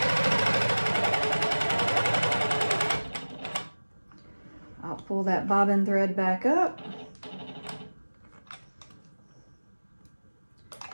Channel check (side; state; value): both; inverted; correlation -1.00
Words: I'll pull that bobbin thread back up,